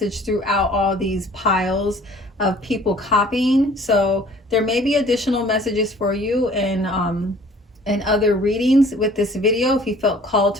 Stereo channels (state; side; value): normal; both; correlation 0.52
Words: throughout all these piles of people copying. So there may be additional messages for you in other readings with this video. If you felt called